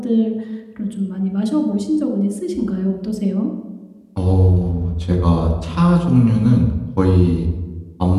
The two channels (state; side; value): identical; both; correlation 1.00